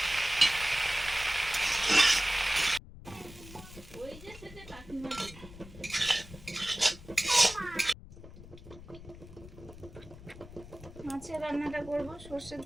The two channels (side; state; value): left; noise; rumble, 16 dB below the sound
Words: ওই যে সেটা কাকিমা মাছের রান্নাটা করব, সর্ষের